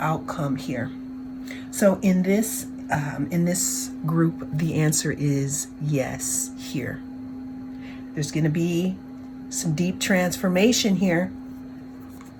here. So in this group, the answer is yes here. There's going to be some deep transformation here,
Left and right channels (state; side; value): identical; both; correlation 1.00